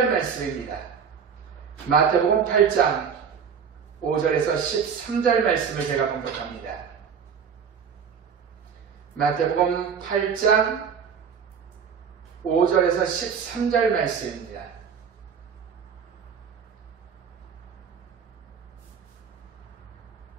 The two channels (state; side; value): quieter; left; 6.9 dB